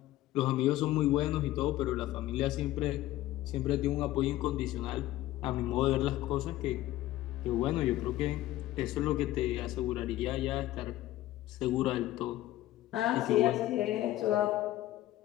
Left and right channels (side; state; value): right; quieter; 15.3 dB